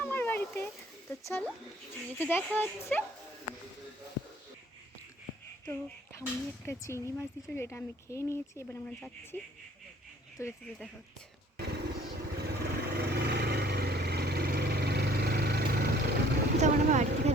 বাড়িতে। তো চলো, যেতে দেখা হচ্ছে। তো ঠাম্মি একটা চিংড়ি মাছ দিচ্ছিল, যেটা আমি খেয়ে নিয়েছি। এবার আমরা যাচ্ছি, তো যেতে দেখা হচ্ছে। তখন আমরা বাড়ি থেকে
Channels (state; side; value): normal; both; correlation 0.56